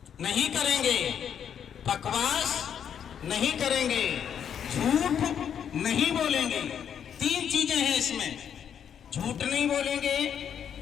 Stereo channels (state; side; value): quieter; right; 8.4 dB